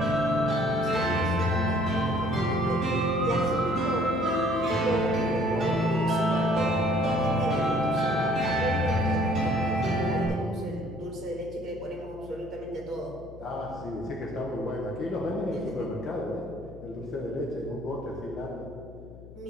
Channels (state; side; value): noise; left; hum, 17 dB below the sound